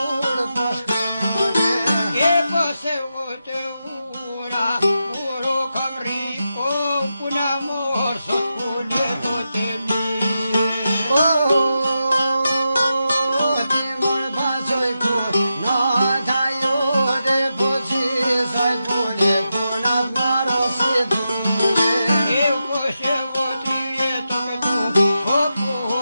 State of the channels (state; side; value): inverted; both; correlation -0.88